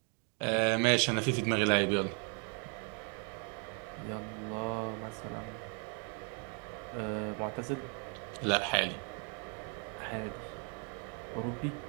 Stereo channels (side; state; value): left; quieter; 39.5 dB